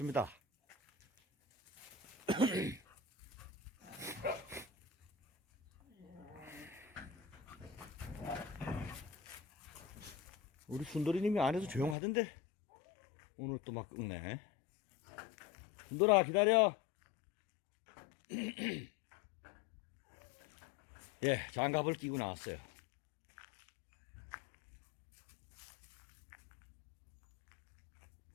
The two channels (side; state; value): right; drops out; at 12.0 s